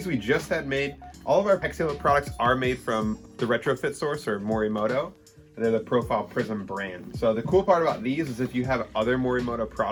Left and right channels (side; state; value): both; identical; correlation 1.00